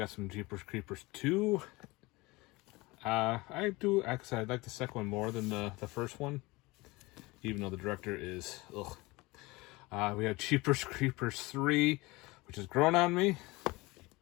some Jeepers Creepers 2. I like the second one more than the first one, even though the director is, ugh. We have Jeepers Creepers 3, which has grown on me.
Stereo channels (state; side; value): quieter; right; 22.6 dB